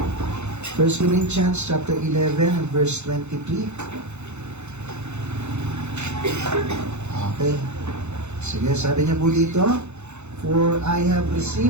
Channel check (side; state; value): left; late; 0.82 ms